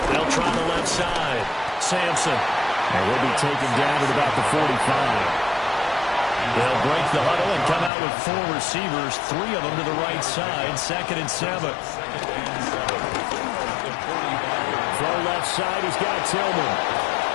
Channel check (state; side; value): drops out; right; at 7.9 s